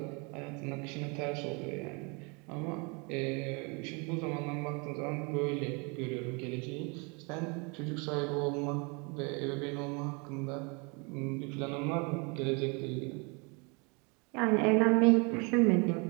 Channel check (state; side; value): quieter; left; 31.4 dB